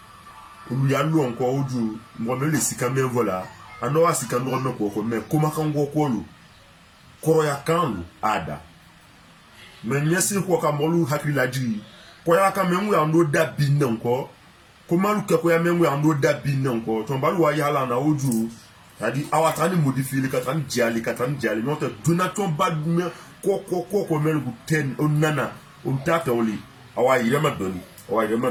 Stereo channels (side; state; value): both; identical; correlation 1.00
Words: ulu ya lu onko oju mo me le sika me vola ano wa sika no me ko me kuma kan go ko lu koro ya kan ada me nyesi ko ka molu hakila ji ko ya ka me nwu ya ndo da bi nko kuma lu ke ko ya me nwu ya ndo da bi nko to ba lu wa ya la na oju tadi awata ni modifier ka tan jali no te duna ton ba me ko me lu ten onana on tata oli awa irema doni